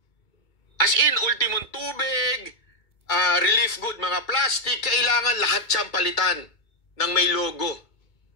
tubig, relief good, mga plastic, kailangan lahat siyang palitan ng may logo.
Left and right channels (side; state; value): right; late; 2.2 ms